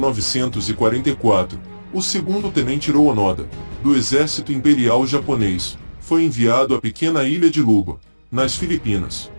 o segundo tenente Hiroo Onoda, do Exército Imperial Japonês, foi enviado à pequena ilha de Luba, nas Filipinas.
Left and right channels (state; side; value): inverted; both; correlation -1.00